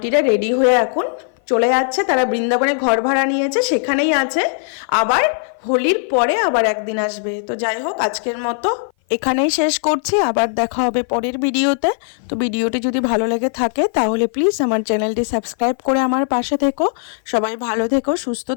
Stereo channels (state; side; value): silent; right; 57 dB below the other